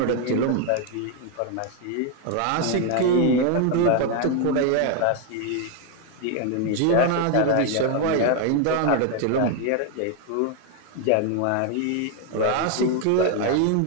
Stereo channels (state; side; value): different; both; correlation 0.01